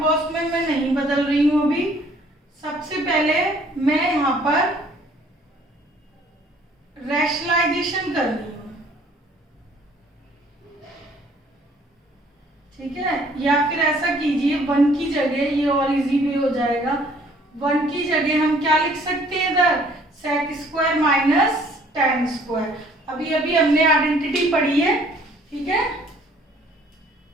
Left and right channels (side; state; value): both; normal; correlation 0.58